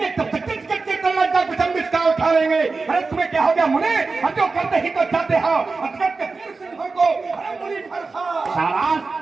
तब तक उठा लेंगे। अरे तुम्हें क्या हो गया मुने? जो करते ही तो चाहते हो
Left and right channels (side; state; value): left; quieter; 4.1 dB